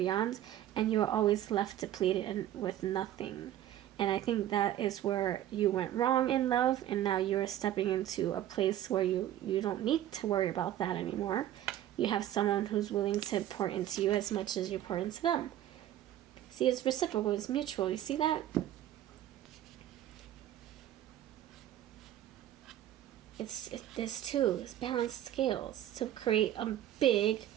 and you were always left depleted and with nothing. And I think that is where you went wrong in love, and now you're stepping into a place where you don't need to worry about that anymore. You have someone who's willing to pour into you as much as you pour into them. See, it's reciprocal, it's mutual. You see that? There's two. It's balanced scales to create a big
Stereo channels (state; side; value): quieter; left; 12.2 dB